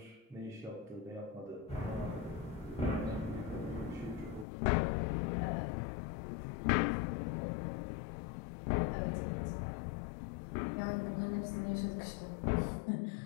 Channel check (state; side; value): drops out; right; at 4.5 s